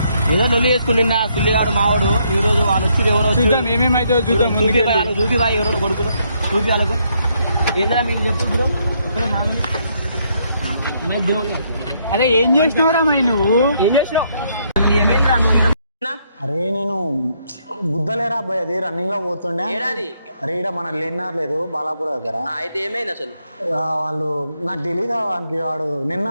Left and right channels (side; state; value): both; inverted; correlation -0.73